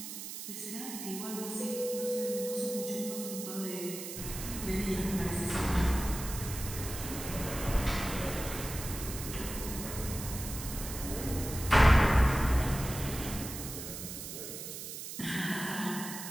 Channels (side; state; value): right; noise; hiss, 8 dB below the sound